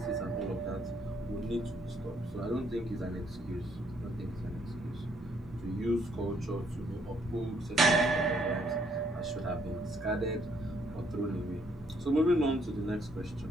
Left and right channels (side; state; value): both; normal; correlation 0.69